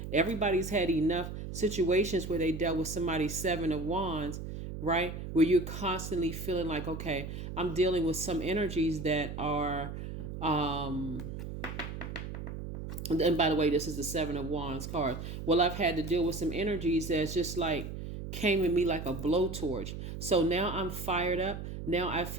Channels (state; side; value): noise; right; hum, 8 dB below the sound